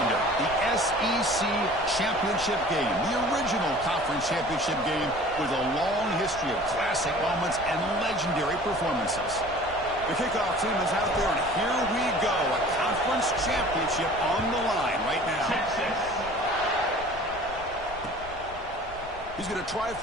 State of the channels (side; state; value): left; noise; rumble, 16 dB below the sound